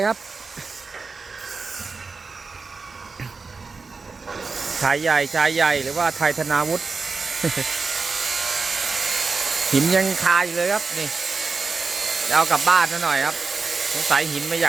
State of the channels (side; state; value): left; quieter; 4.4 dB